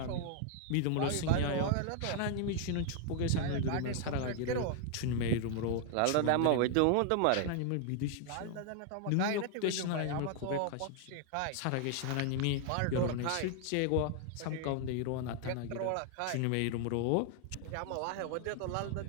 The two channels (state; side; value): different; both; correlation 0.00